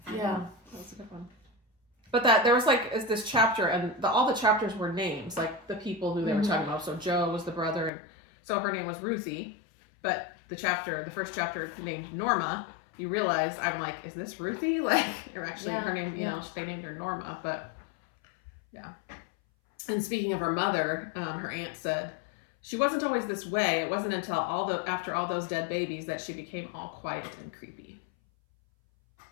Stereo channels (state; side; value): drops out; right; at 7.9 s